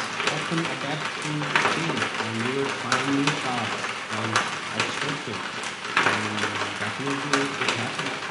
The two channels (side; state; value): both; identical; correlation 1.00